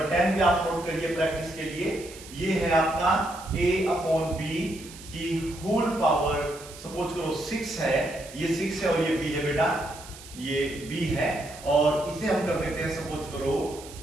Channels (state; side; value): noise; right; hiss, 17 dB below the sound